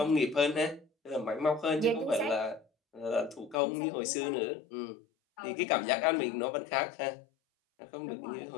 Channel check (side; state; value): right; drops out; at 3.6 s